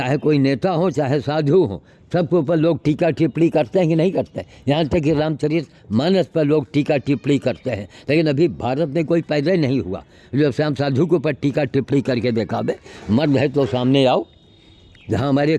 कोई नेता हो, चाहे साधु हो, सबके ऊपर लोग टीका टिप्पणी करते हैं कि नहीं करते हैं। यहाँ तक कि रामचरित मानस पर लोग टीका टिप्पणी करते हैं, लेकिन अभी भारत में कोई पैदा ही नहीं हुआ जो श्याम साधु के ऊपर टीका टिप्पणी करके दिखावे। मर्द है तो सामने आओ, जहाँ हमारे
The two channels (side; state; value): both; identical; correlation 1.00